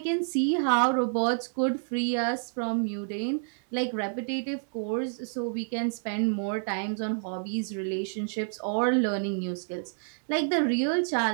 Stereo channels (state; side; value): silent; left; digital silence